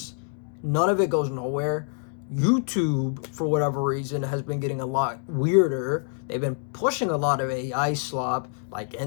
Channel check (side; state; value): right; silent; 61 dB below the other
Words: None of it goes nowhere. YouTube, for whatever reason, has been getting a lot weirder. They've been pushing a lot of AI slop, like